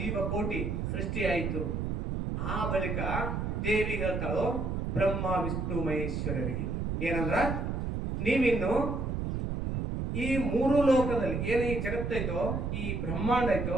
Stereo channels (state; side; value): noise; right; rumble, 2 dB below the sound